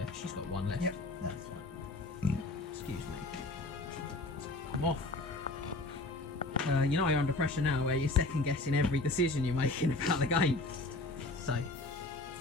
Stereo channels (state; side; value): quieter; right; 3.0 dB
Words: She's got 1 left. Yep, that's fine. Excuse me. Come off. You know you're under pressure now, where you're second guessing every decision you're making about the game. So,